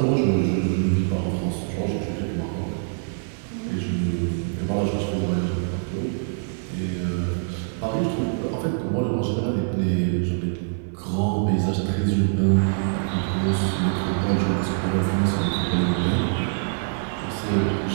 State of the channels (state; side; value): silent; left; 62 dB below the other